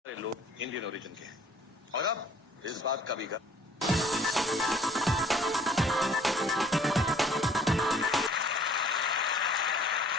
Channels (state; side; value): normal; both; correlation 0.56